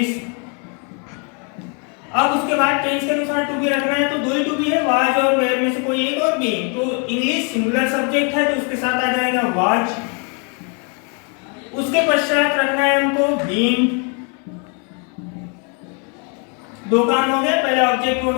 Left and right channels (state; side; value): quieter; right; 37.0 dB